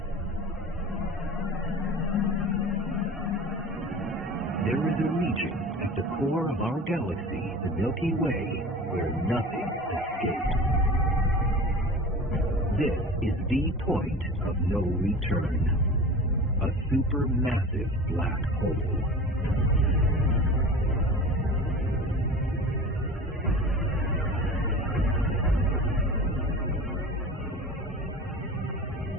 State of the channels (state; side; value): normal; both; correlation 0.36